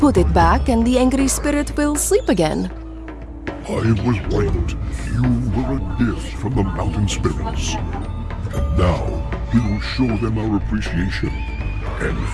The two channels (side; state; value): both; identical; correlation 1.00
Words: it back and the angry spirit will sleep again. I was right. You were a gift from the mountain spirits. And now, we will show them our appreciation and